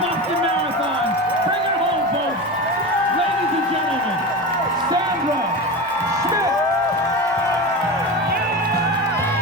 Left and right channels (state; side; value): noise; right; rumble, 29 dB below the sound